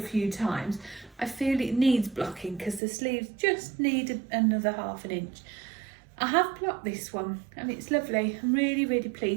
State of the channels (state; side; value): drops out; left; at 2.8 s